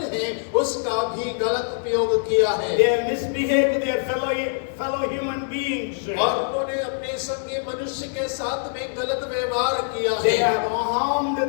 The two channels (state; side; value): silent; right; digital silence